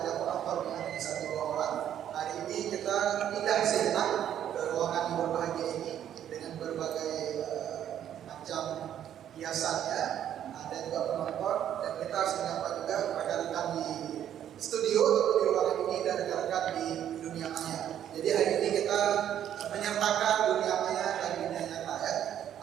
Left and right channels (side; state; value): left; quieter; 10.4 dB